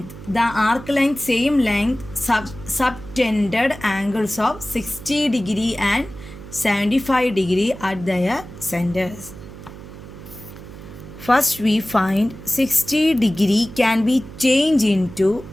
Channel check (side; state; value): right; noise; hum, 15 dB below the sound